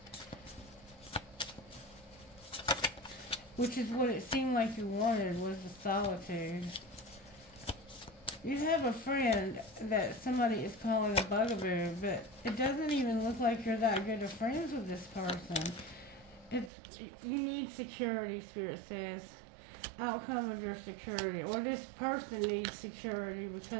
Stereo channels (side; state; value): left; drops out; at 16.7 s